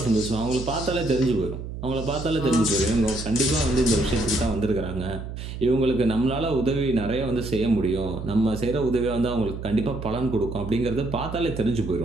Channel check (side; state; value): right; noise; hum, 8 dB below the sound